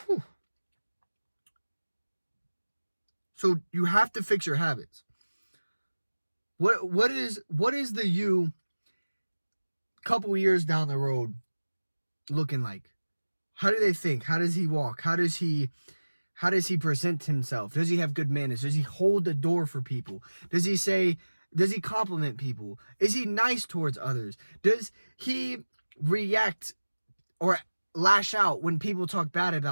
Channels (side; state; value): both; inverted; correlation -1.00